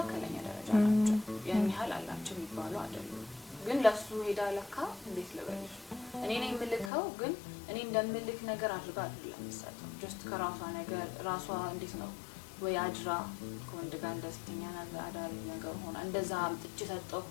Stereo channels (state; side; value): drops out; right; at 6.9 s